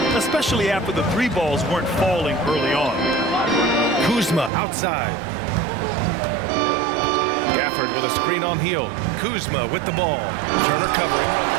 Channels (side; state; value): left; drops out; at 4.5 s